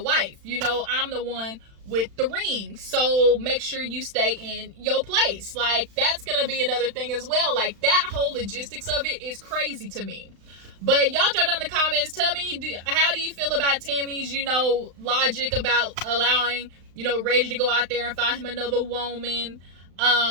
You know, I'm the one with the ring. So make sure you stay in your place. Like, that's going to be another thing as well. Like, that whole logistics of it is crazy to me. But y'all drop down in the comments. Tell me, how do you feel about Tami's, you know, logic about allowing, you know, Reggie to go out there and find him another woman?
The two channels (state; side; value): late; left; 35 ms